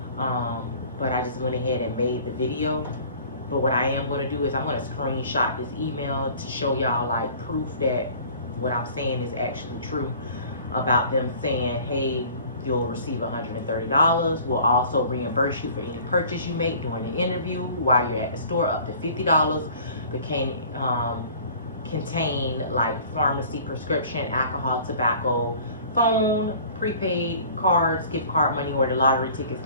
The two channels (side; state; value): both; inverted; correlation -0.48